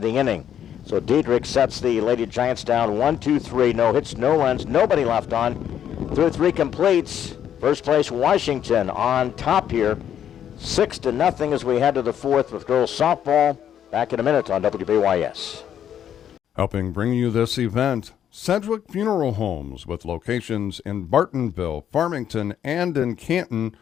the inning. So Diedrich sets the Lady Giants down 1-2-3. No hits, no runs, nobody left on. Through 3 completes. First place Washington on top here. 6-0 as we head to the 4th with girls softball. Back in a minute on WBYS. Helping bring you this event, Sedgwick Funeral Homes, with locations in Bartonville, Farmington, and in Canton.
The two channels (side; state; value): right; quieter; 9.7 dB